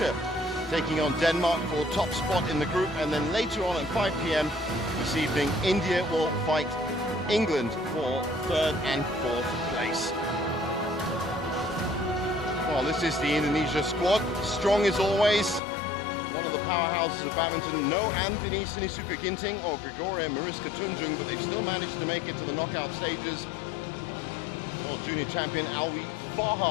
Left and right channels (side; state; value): right; drops out; at 15.6 s